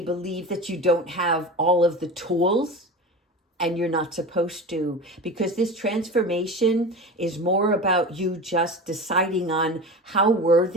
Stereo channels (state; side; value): normal; both; correlation 0.30